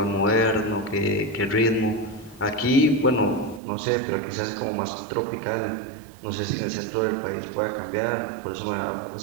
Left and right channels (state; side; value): drops out; left; at 3.6 s